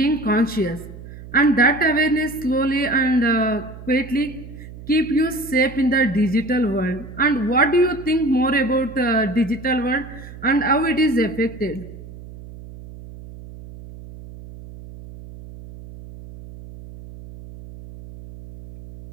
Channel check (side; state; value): right; noise; hum, 15 dB below the sound